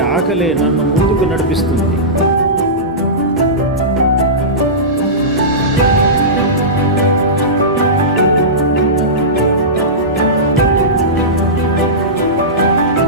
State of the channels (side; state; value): both; normal; correlation -0.18